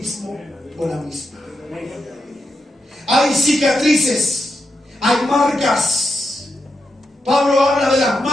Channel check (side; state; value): both; normal; correlation 0.86